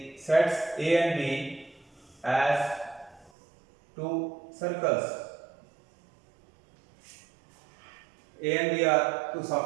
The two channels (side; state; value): left; drops out; at 3.3 s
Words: sets A and B as two circles. A and B are two